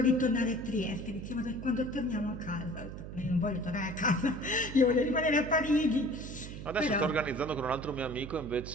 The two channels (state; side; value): noise; right; hum, 10 dB below the sound